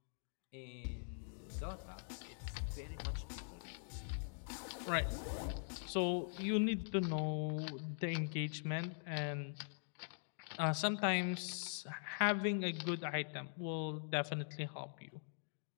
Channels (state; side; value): silent; right; digital silence